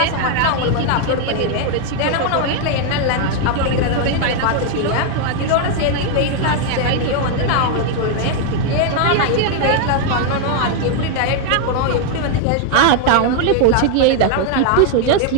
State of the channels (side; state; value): both; different; correlation 0.00